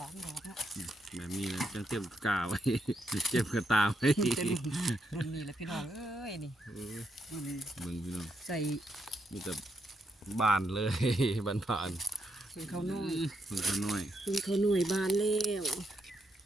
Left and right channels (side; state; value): both; normal; correlation 0.80